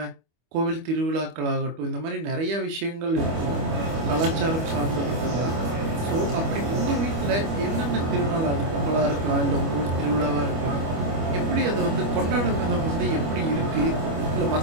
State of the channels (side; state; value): left; late; 25 ms